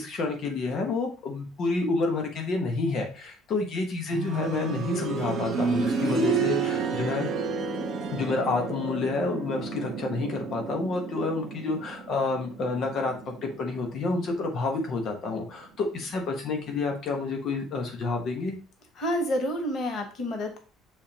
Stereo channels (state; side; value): normal; both; correlation 0.56